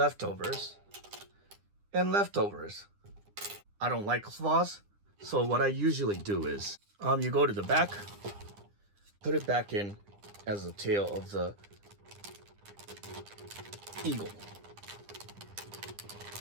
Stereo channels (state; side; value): late; left; 9.9 ms